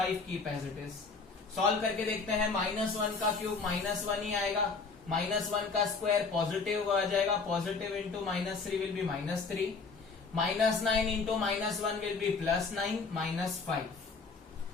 keep as it is. Solve करके देखते हैं, माइनस 1 का क्यूब माइनस 1 ही आएगा, माइनस 1 का स्क्वायर पॉजिटिव आ जाएगा, positive into minus 3 will be minus 3, minus 9 into minus 1 will B plus 9 minus 5।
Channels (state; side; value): quieter; right; 4.5 dB